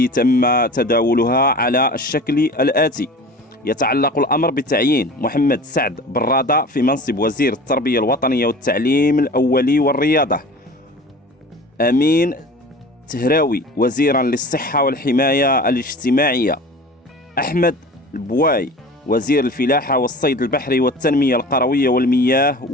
تم تداولها على الشكل الآتي: يتعلق الأمر بتعيين محمد سعد برادة في منصب وزير التربية الوطنية والتعليم الأولي والرياضة. أمين تهراوي وزيرا للصحة والحماية الاجتماعية. أحمد البواي وزير الفلاحة والصيد البحري والتنمية القروية والمياه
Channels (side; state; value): both; normal; correlation 0.39